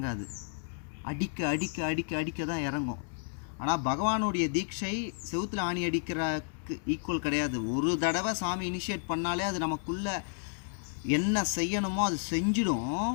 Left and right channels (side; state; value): right; silent; 57 dB below the other